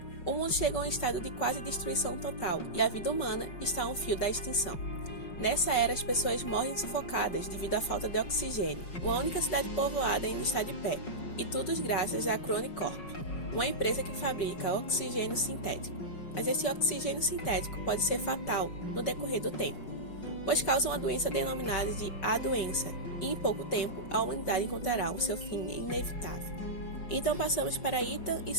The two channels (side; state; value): right; late; 5.4 ms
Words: O mundo chegou a um estado de quase destruição total e a vida humana está a um fio da extinção. Nessa era, as pessoas morrem sufocadas devido à falta de oxigênio. Uma única cidade povoada ainda está de pé, e tudo graças à Chronic Corp, uma empresa que fabrica oxigênio sintético. Mas esse oxigênio sintético pode ser fatal no decorrer do tempo, pois causa uma doença denominada de A Doença, e em pouco tempo a humanidade encontrará o seu fim inevitável. Então passamos para Ethan e